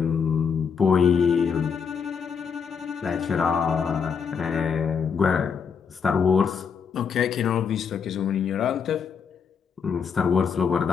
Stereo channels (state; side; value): quieter; right; 6.4 dB